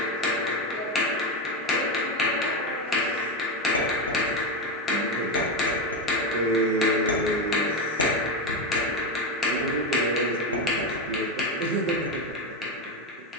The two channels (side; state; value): both; normal; correlation 0.12